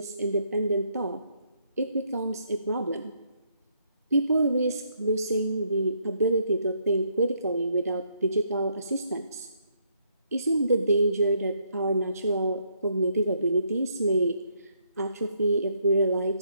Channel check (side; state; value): both; inverted; correlation -0.72